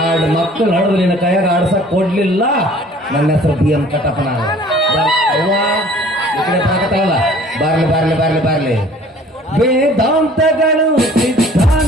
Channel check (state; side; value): normal; both; correlation 0.52